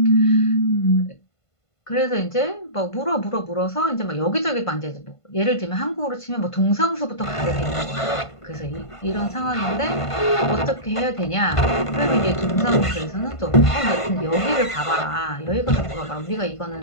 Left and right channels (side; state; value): right; late; 1.5 ms